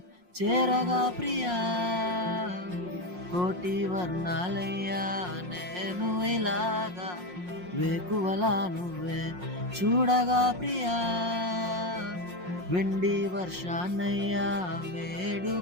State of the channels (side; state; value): left; late; 5.6 ms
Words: చేరగా ప్రియా, కోటి వర్ణాలయ్యా నేను ఇలాగా, వేకువలా నువ్వే చూడగా ప్రియా, వెండి వర్షాన్నయ్యా